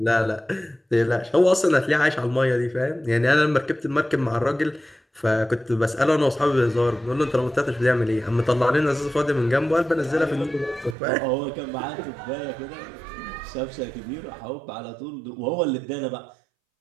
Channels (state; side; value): drops out; left; at 11.0 s